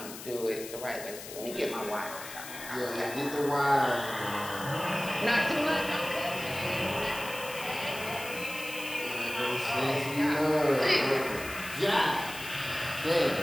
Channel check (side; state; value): left; noise; hiss, 12 dB below the sound